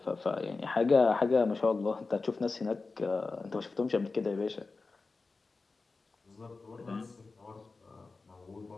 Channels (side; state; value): right; quieter; 3.9 dB